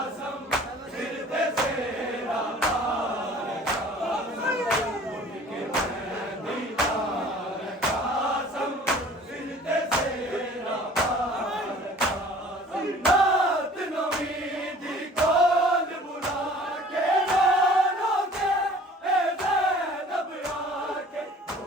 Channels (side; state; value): both; normal; correlation 0.49